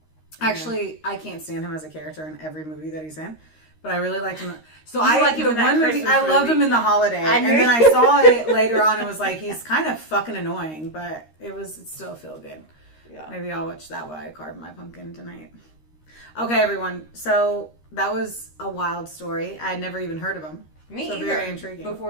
Actually, I can't stand him as a character in every movie that he's in, but I really liked him. So I like him the in that one movie Christmas I loved movie. him in The Holiday, and then I saw it later on and was like, he's kind of fucking annoying, but it still feel good. Yeah. Maybe I'll watch that while I carve my pumpkin tonight. Okay, everyone. So that was a wild story. I had never even heard of him. Me so either. Very intriguing.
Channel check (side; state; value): right; late; 13 ms